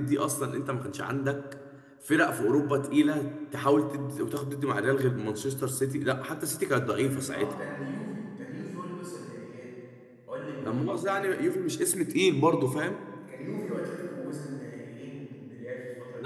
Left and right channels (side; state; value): both; identical; correlation 1.00